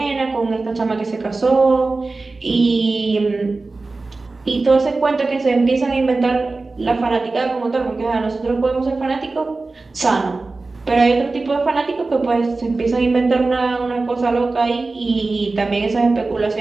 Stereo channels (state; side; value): quieter; left; 3.5 dB